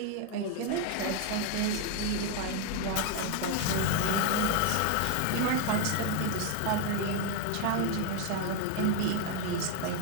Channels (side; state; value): both; different; correlation 0.01